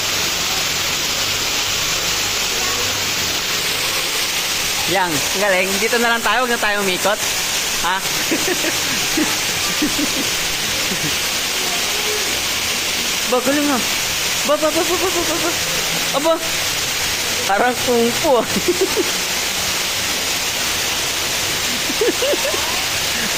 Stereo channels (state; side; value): identical; both; correlation 1.00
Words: Yang, galing. Dito na lang tayo, huwag na tayo umikot. Ha? Ba, galing nga. Ba. Aba. Parang kung fu.